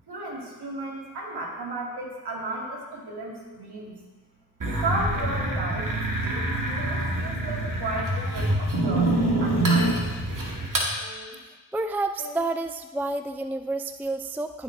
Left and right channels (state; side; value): normal; both; correlation 0.46